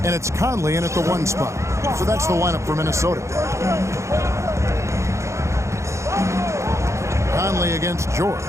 And it's Conley in at the 1 spot. So that's the lineup for Minnesota. Conley against George.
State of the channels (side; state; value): left; late; 0.14 ms